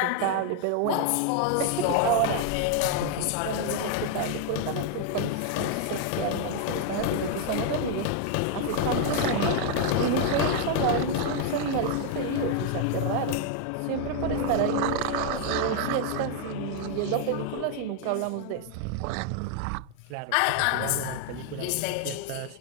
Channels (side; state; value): both; different; correlation 0.00